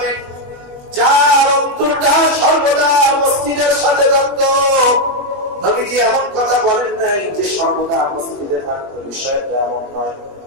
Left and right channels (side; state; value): left; late; 21 ms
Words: যার অন্তরটা সর্বদা মসজিদের সাথে যুক্ত। নবীজি এমন কথা বলেন নাই যে সর্বদা মসজিদে থাকবে, বিষয়টা এমন নয়।